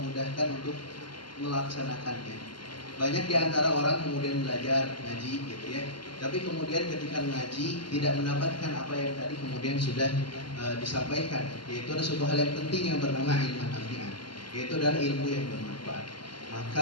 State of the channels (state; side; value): late; right; 0.72 ms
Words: mudahkan untuk melaksanakannya. Banyak di antara orang kemudian belajar ngaji gitu ya, tapi kemudian ketika ngaji tidak mendapatkan apa yang tadi kemudian sudah disampaikan, yaitu ada suatu hal yang penting yang bernama ilmu nafi'an, yaitu adalah ilmu yang bermanfaat.